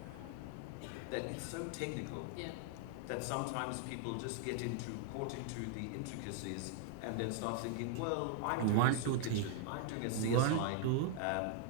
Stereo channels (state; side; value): different; both; correlation 0.00